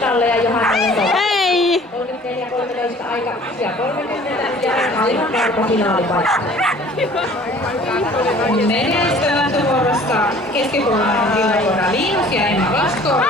ja Johannalle Hei! 34-13 aika ja 30 ja aivan varma finaalipaikka. Menestyvät vuorossa keskikoulun villakoira Linus ja Emma Vasko.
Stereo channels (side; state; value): both; normal; correlation 0.50